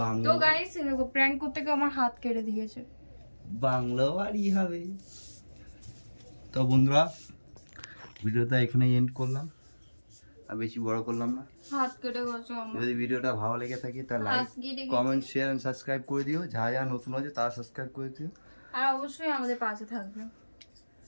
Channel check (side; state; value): both; inverted; correlation -1.00